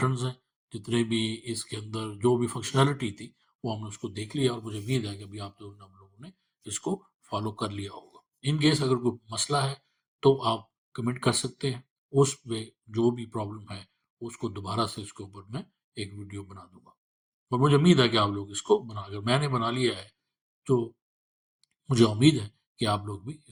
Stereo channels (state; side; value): identical; both; correlation 1.00